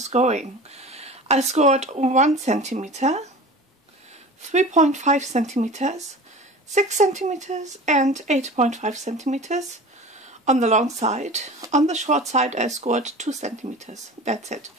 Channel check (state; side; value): normal; both; correlation 0.37